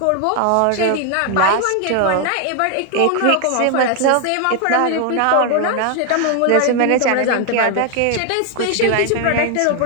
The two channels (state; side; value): different; both; correlation 0.00